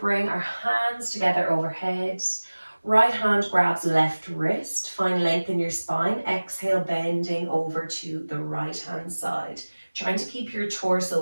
our hands together overhead. Right hand grabs left wrist, find length in your spine. Exhale, bending over to the right hand side. Trying to keep your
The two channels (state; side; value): inverted; both; correlation -1.00